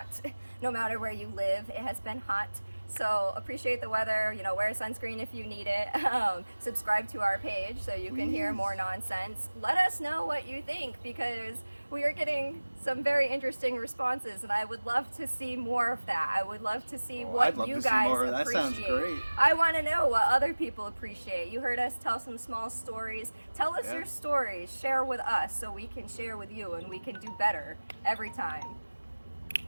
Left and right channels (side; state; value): both; inverted; correlation -1.00